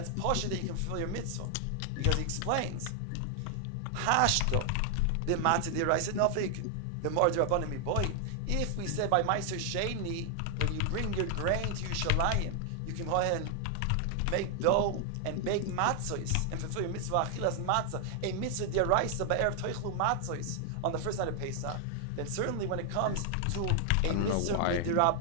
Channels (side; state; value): both; different; correlation 0.00